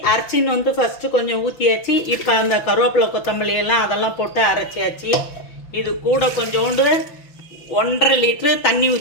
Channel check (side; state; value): right; late; 5.9 ms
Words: அரைச்சின்னு ஃபஸ்ட்டு கொஞ்சம் ஊற்றியாச்சு. இப்போ அந்த கருவேப்பிலை கொத்தமல்லி எல்லாம் அதெல்லாம் போட்டு அரைச்சியாச்சு. இது கூட கொஞ்சோண்டு 1.5 லிட்ரு தண்ணி